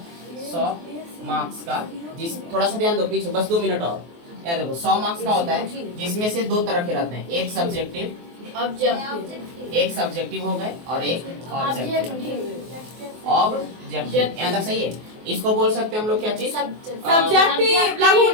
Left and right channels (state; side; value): late; left; 24 ms